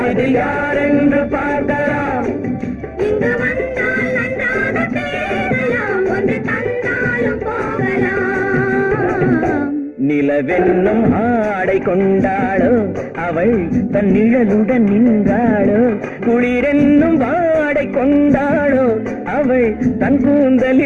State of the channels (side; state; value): both; identical; correlation 1.00